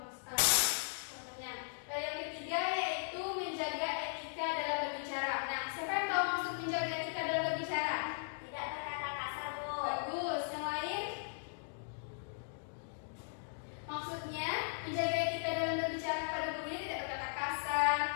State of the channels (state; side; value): silent; right; digital silence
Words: Dan yang ketiga yaitu menjaga etika dalam berbicara. Nah, siapa yang tahu maksud menjaga etika dalam berbicara? Tidak berkata kasar, Bu. Bagus. Yang lain? Maksudnya menjaga etika dalam berbicara pada gurunya tidak berkata kasar,